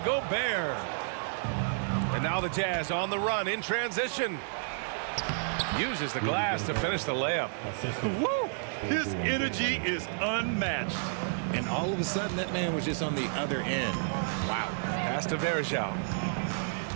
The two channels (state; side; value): silent; left; digital silence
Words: Gobert. And now the Jazz on the run in transition. Uses the glass to finish the layup. Woo! His energy is unmatched. And all of a sudden, that man was just on the other end. Wow. Pass to Verjao.